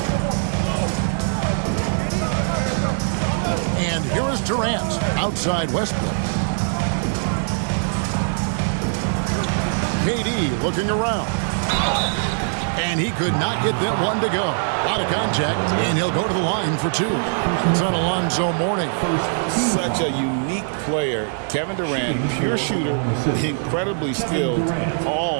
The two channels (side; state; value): left; silent; digital silence